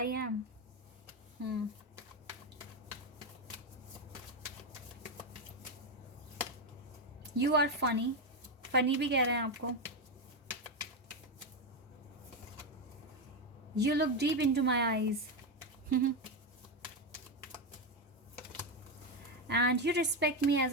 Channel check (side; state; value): both; normal; correlation 0.10